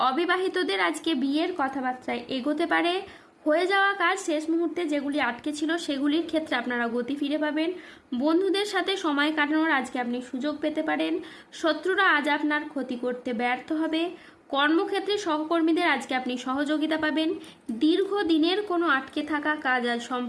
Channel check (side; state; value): both; identical; correlation 1.00